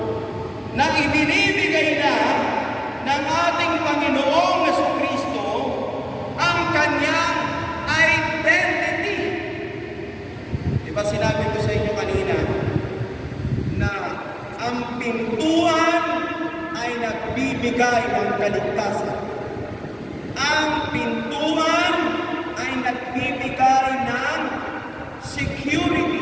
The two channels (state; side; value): identical; both; correlation 1.00